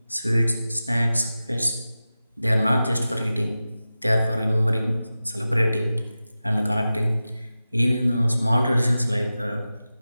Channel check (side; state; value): both; inverted; correlation -0.94